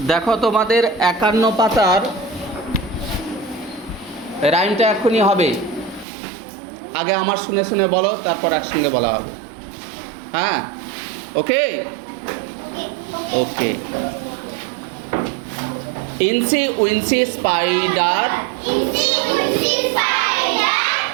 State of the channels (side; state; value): left; drops out; at 6.1 s